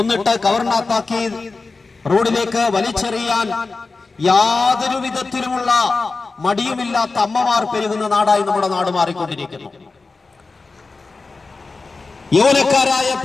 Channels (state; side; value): quieter; right; 3.9 dB